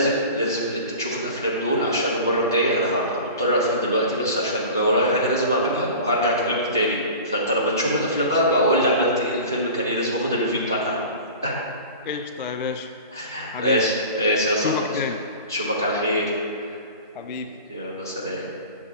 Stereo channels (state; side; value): inverted; both; correlation -0.36